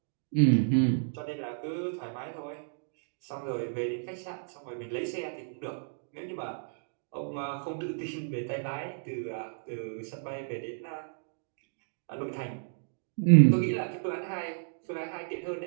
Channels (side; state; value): left; silent; digital silence